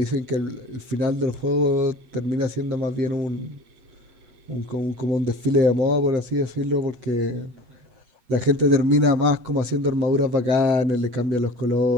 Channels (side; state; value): left; late; 8.1 ms